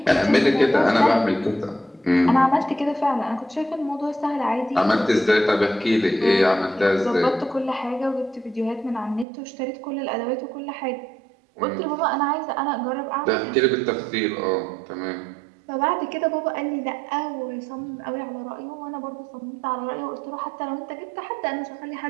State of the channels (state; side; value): drops out; left; at 9.2 s